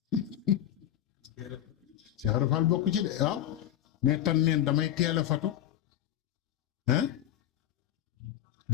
Cheikh Rafal bokk ci de waaw mais tan neen damay teel a fatu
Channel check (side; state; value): right; quieter; 11.6 dB